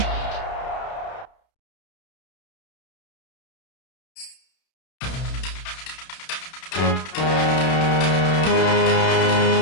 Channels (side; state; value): right; late; 31 ms